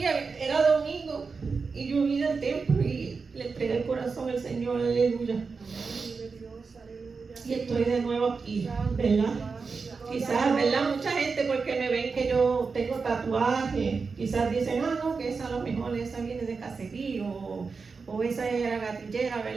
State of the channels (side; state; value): left; quieter; 4.8 dB